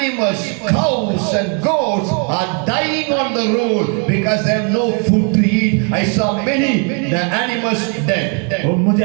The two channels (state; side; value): quieter; left; 37.3 dB